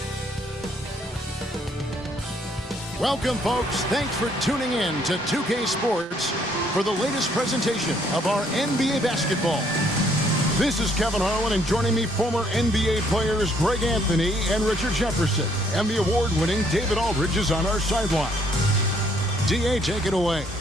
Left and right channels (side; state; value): both; normal; correlation 0.66